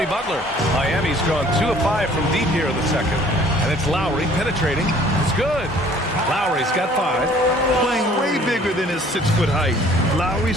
Butler. Miami's gone 2 of 5 from deep here in the second. And it's Lowry penetrating. It's good. Lowry's got 5. Playing way bigger than his 6-foot height. Lowry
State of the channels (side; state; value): both; normal; correlation 0.55